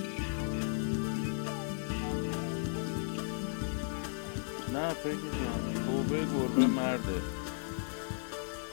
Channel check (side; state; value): right; silent; 54 dB below the other